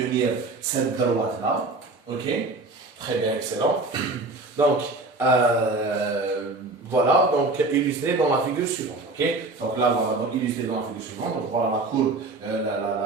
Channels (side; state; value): left; quieter; 3.2 dB